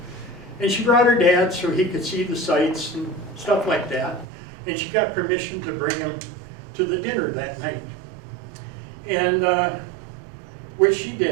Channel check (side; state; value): left; drops out; at 4.2 s